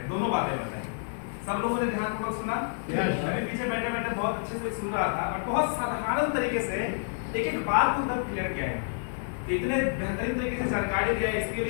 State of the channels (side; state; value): right; silent; 59 dB below the other